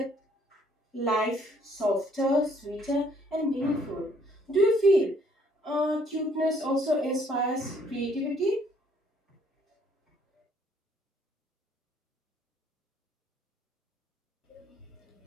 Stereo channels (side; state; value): both; normal; correlation 0.64